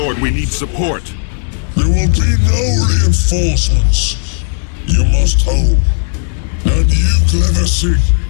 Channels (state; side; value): silent; right; 71 dB below the other